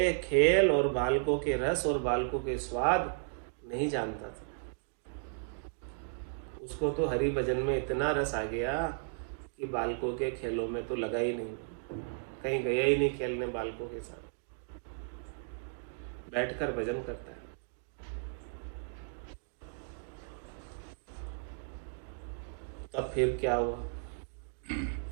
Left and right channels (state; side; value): silent; left; digital silence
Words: खेल और बालकों के रस और बालकों के स्वाद नहीं जानता था। उसको तो हरि भजन में इतना रस आ गया कि बालकों के खेलों में तो लगा ही नहीं, कहीं गया ही नहीं खेलने बालकों के साथ, बैठकर भजन करता है। तब फिर क्या हुआ?